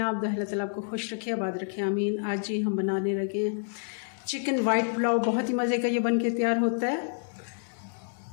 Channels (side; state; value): right; silent; 59 dB below the other